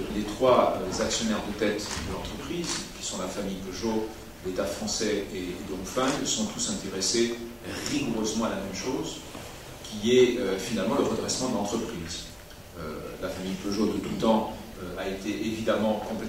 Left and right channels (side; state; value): both; identical; correlation 1.00